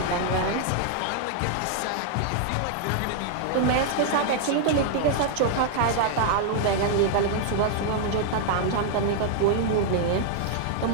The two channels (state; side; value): different; both; correlation -0.01